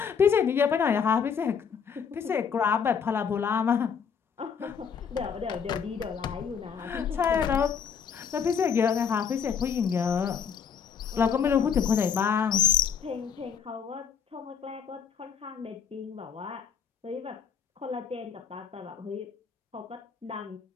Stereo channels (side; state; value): right; quieter; 6.9 dB